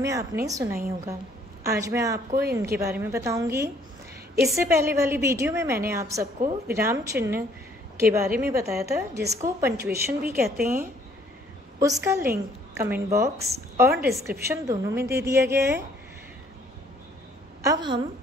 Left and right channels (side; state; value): both; normal; correlation 0.62